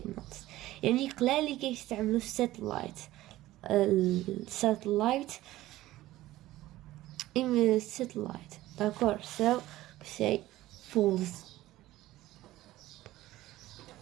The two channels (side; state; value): left; quieter; 16.1 dB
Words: يعني قلالي كيستعملوا الساتلايت d'accord, so we say false.